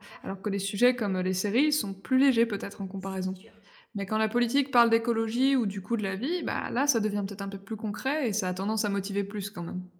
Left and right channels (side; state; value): both; identical; correlation 1.00